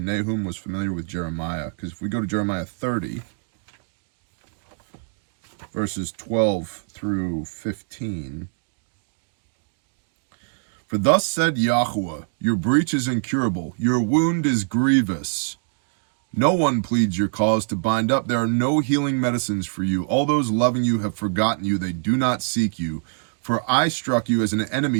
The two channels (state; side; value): silent; left; digital silence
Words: Nahum was familiar with Jeremiah. Because if we go to Jeremiah 30, verses 12 through 15. For thus said Yahweh, your breach is incurable, your wound is grievous. No one pleads your cause to bind up. There are no healing medicines for you. All those loving you have forgotten you. They do not seek you. For I struck you as an